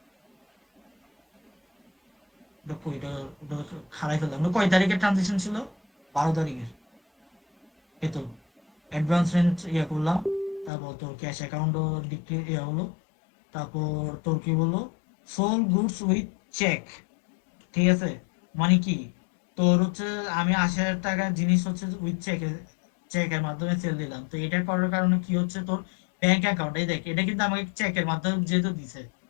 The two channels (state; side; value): drops out; right; at 10.7 s